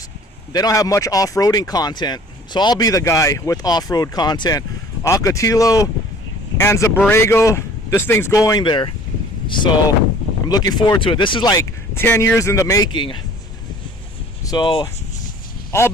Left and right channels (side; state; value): both; normal; correlation 0.50